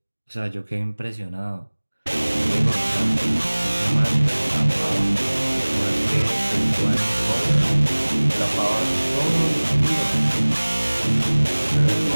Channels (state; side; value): inverted; both; correlation -1.00